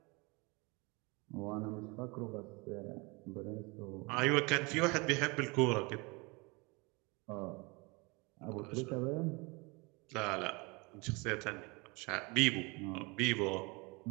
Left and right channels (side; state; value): left; quieter; 27.4 dB